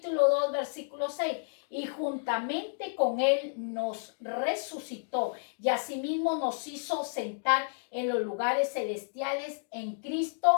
2, versículo 6. Y juntamente con él nos resucitó y asimismo nos hizo sentar en los lugares celestiales en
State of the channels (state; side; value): silent; right; digital silence